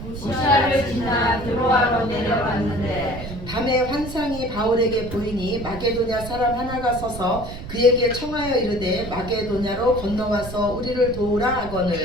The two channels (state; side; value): noise; right; rumble, 10 dB below the sound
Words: 무시아를 지나 드로아로 내려갔는데 밤에 환상이 바울에게 보이니 마게도냐 사람 하나가 서서 그에게 청하여 이르되 마게도냐로 건너와서 우리를 도우라